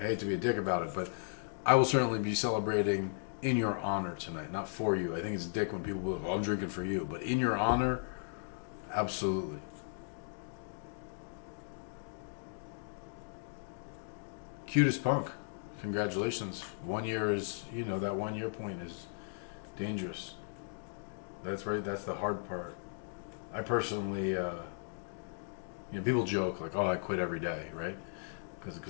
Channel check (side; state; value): right; silent; digital silence